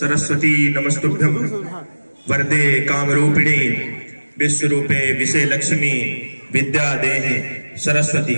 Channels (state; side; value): inverted; both; correlation -1.00